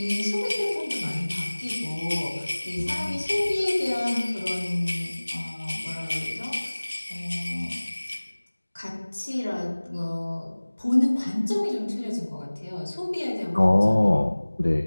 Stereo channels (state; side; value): inverted; both; correlation -1.00